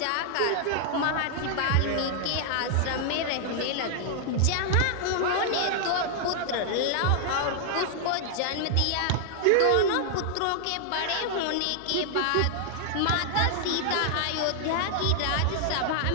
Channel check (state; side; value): different; both; correlation -0.01